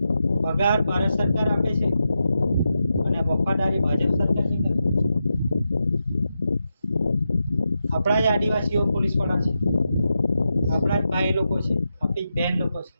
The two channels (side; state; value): both; inverted; correlation -0.88